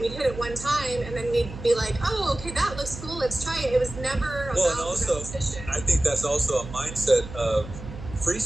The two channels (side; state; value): right; noise; hum, 12 dB below the sound